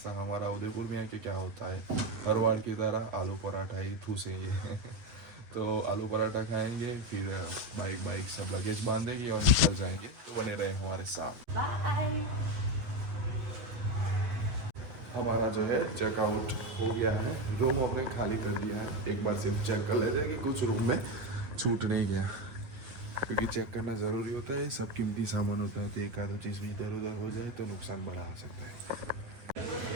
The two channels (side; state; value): left; late; 8.7 ms